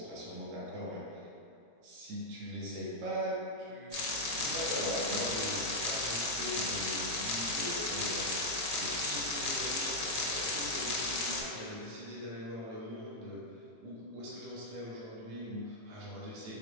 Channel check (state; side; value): late; left; 18 ms